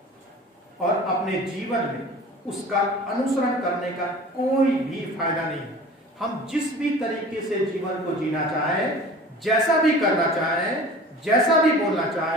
और अपने जीवन में उसका अनुसरण करने का कोई भी फायदा नहीं है। हम जिस भी तरीके से जीवन को जीना चाहें, जैसा भी करना चाहें, जैसा भी बोलना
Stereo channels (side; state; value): both; normal; correlation 0.42